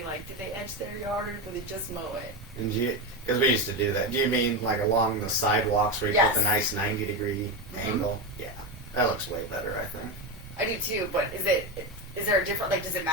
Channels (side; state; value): both; normal; correlation 0.15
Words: like, did they edge their yard or did they just mow it? Because we used to do that. Do you mean like along the sidewalks where you put the nice 90-degree angle? Yeah, that looks way better, I think. I do too, but is there a different, like, does it